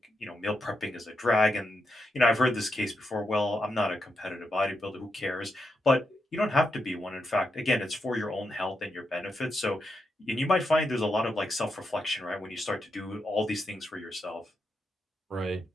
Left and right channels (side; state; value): both; normal; correlation 0.84